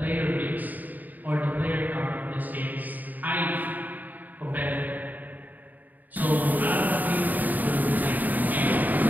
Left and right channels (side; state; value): left; late; 0.084 ms